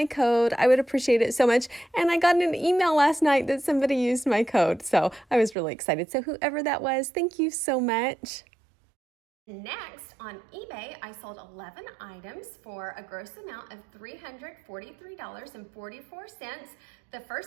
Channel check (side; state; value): left; drops out; at 5.6 s